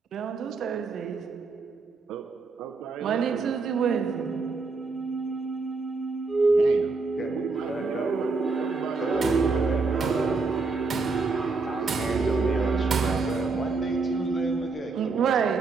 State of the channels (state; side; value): quieter; left; 4.2 dB